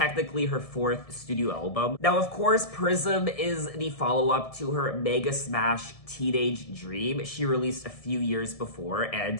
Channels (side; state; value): right; late; 1.7 ms